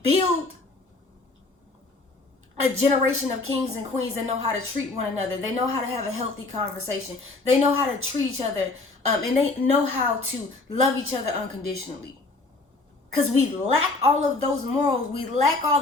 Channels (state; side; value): quieter; right; 3.3 dB